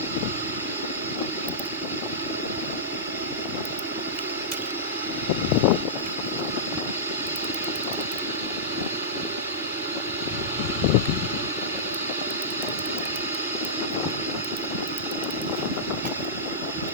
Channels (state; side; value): normal; both; correlation -0.16